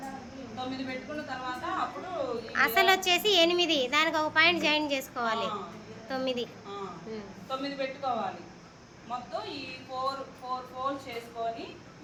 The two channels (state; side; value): identical; both; correlation 1.00